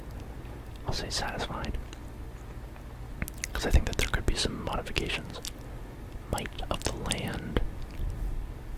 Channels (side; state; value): both; identical; correlation 1.00